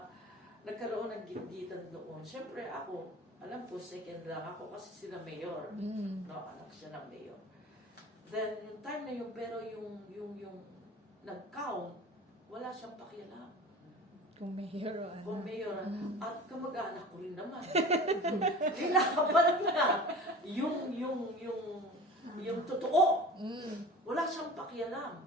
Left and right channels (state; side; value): normal; both; correlation 0.38